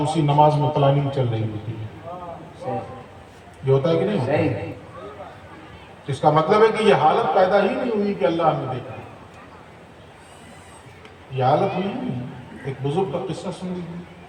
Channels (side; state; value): both; identical; correlation 1.00